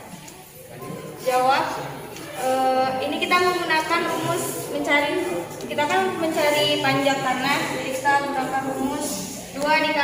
Jawab, ini kita menggunakan rumus kita kan mencari panjang tanah. Jadi kita menggunakan rumus 2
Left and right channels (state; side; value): identical; both; correlation 1.00